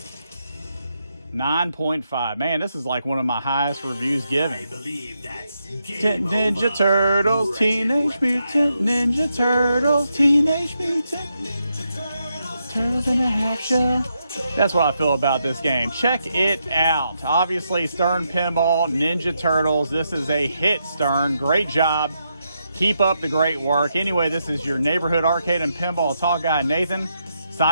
9.5. Man, this is like one of my highest reviews given. Ninja Turtles, Teenage Mutant Ninja Turtles, Teenage Mutant Turtles in a Half Shell. That's what I feel about this game. Check it out. Obviously, Stern Pinball, Ninja Turtles. This is a hit, Stern. Great job. Keep up the great work. Anyway, this is your neighborhood arcade and pinball talk guy, Nathan,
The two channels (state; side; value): inverted; both; correlation -0.82